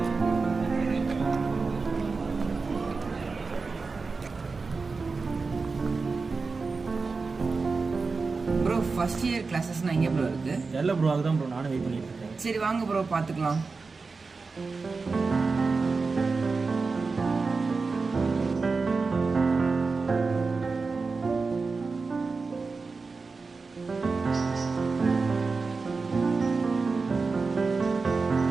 ப்ரோ ஃபர்ஸ்ட் இயர் கிளாஸஸ்னால் எங்கே ப்ரோ இருக்குது? இல்லை ப்ரோ, அதுதான் ப்ரோ நானும் வெயிட் பண்ணிட்டு இருக்கேன். சரி வாங்க ப்ரோ பார்த்துக்கலாம்.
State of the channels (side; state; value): left; quieter; 4.3 dB